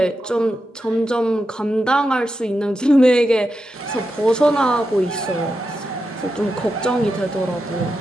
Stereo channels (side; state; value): both; normal; correlation 0.88